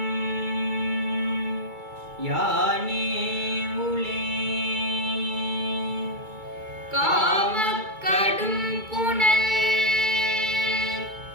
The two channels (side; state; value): left; late; 2.3 ms